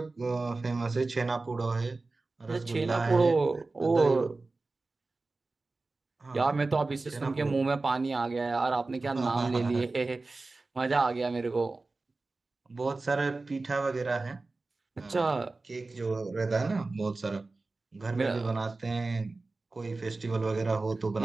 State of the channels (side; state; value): left; quieter; 3.5 dB